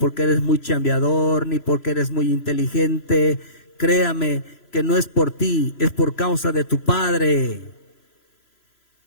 eres muy chambeador, ni porque eres muy inteligente. Créame que no es por ti, es por causa de tu Padre.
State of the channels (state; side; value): late; right; 3.0 ms